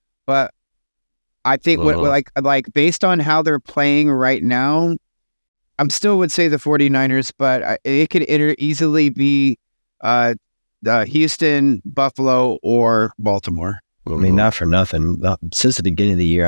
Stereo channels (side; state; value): both; inverted; correlation -1.00